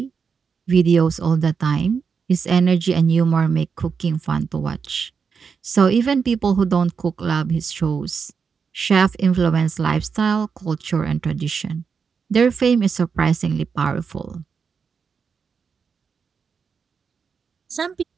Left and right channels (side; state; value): left; quieter; 5.9 dB